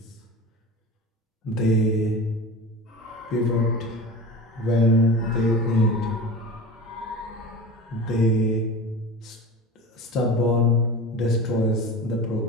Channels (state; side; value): normal; both; correlation 0.32